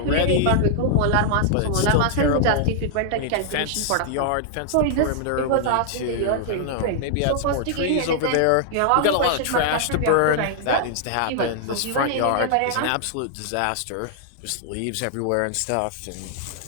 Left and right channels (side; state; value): both; different; correlation -0.01